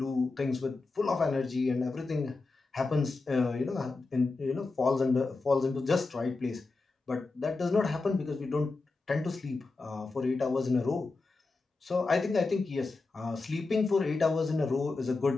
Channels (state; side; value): quieter; right; 3.7 dB